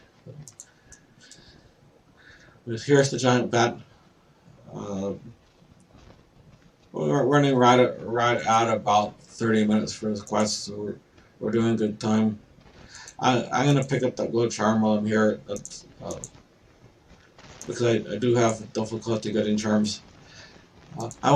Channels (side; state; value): both; identical; correlation 1.00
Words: Here's the giant bat. We're running right at about 30 minutes for this quest, so we're doing good time. I'm gonna pick up that glow charm while I'm here. That's because I do have difficulty getting charms. I